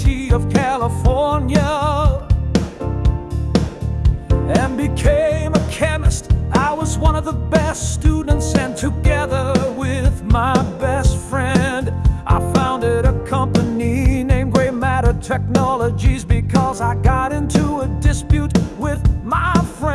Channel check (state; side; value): identical; both; correlation 1.00